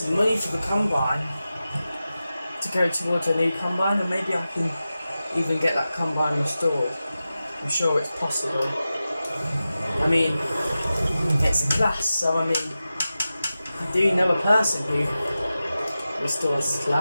money for the combine to go towards a new combine, and maybe I can even get that combine restored. I'm sure it's possible. I mean, it's a class, so I mean, I do know a person who restores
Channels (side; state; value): both; inverted; correlation -0.94